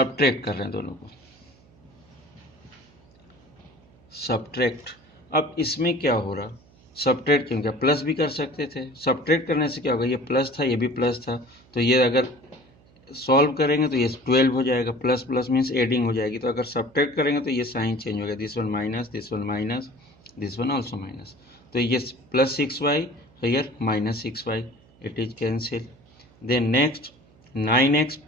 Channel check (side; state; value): right; noise; hum, 28 dB below the sound